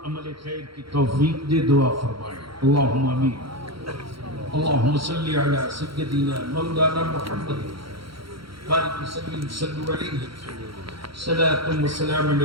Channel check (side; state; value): left; late; 0.74 ms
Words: عمل خیر کی توفیق دے، دعا فرمائے، اللہم آمین۔ اللہم صلی علی سیدنا مولانا محمد بارک وسلم، صلو علیہ، صلاۃ و سلام